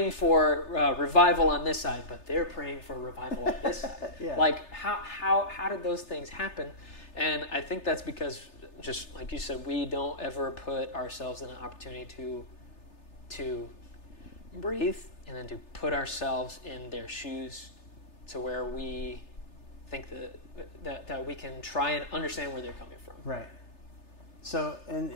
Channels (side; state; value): right; late; 3.3 ms